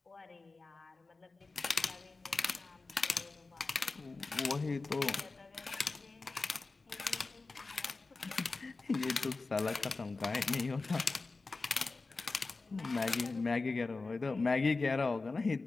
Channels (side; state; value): right; quieter; 3.7 dB